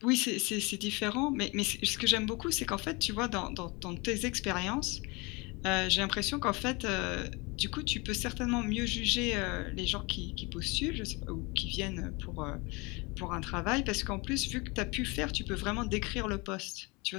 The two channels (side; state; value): right; quieter; 26.9 dB